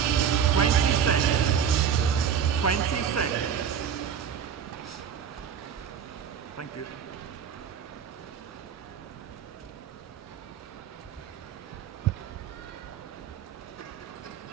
seconds. 20 seconds. Thank you.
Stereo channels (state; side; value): quieter; left; 7.9 dB